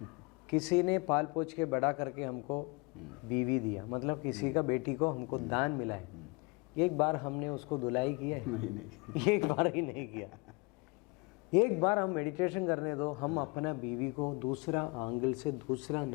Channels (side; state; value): right; quieter; 29.2 dB